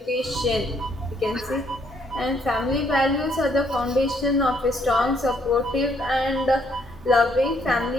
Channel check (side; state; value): both; normal; correlation 0.69